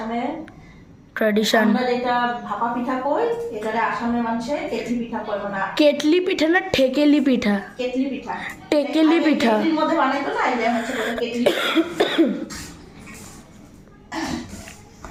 ট্র্যাডিশন। আমরা যেটা ভাপা পিঠা কই, এটারে আসামে মানুষে কেটলি পিঠা কয়। মানে কেটলি পিঠা না ঠেকেলি পিঠা? কেটলি পিঠা, টেকেলি পিঠা। কেটলির মধ্যে বানাইতো না, এটা হচ্ছে কেটলি।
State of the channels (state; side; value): identical; both; correlation 1.00